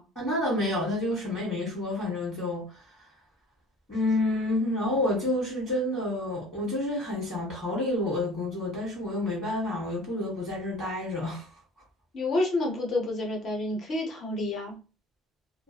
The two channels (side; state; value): both; normal; correlation 0.46